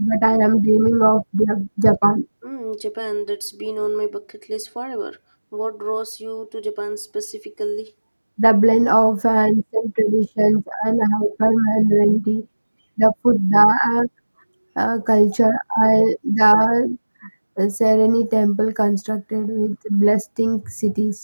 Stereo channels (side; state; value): both; inverted; correlation -1.00